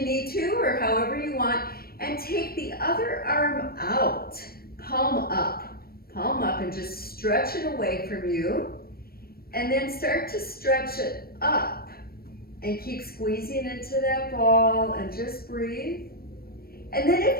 need to or however you want. And take the other arm out, palm up and just stretch it away from you. And then start to stretch it up and keep squeezing into that ball and just breathe. And then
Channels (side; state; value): right; late; 0.44 ms